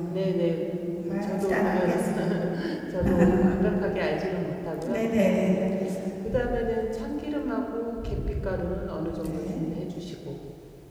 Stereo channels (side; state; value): both; identical; correlation 1.00